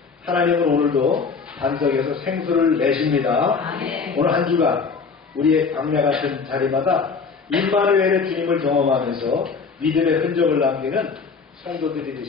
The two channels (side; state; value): right; quieter; 5.1 dB